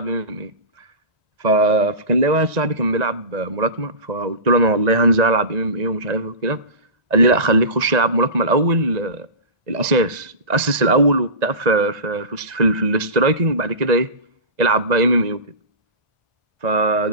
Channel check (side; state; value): left; late; 1.9 ms